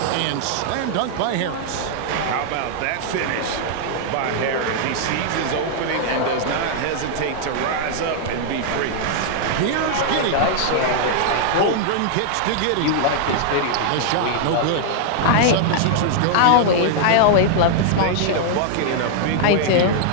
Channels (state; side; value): different; both; correlation -0.01